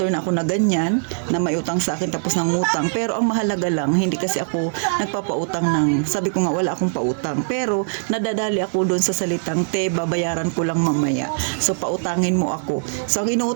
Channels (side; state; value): left; silent; 65 dB below the other